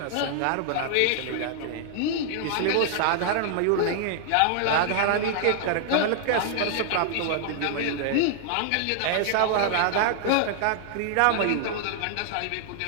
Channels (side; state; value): both; different; correlation -0.01